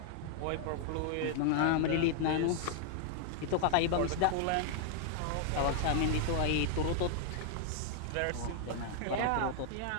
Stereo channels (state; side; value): different; both; correlation 0.00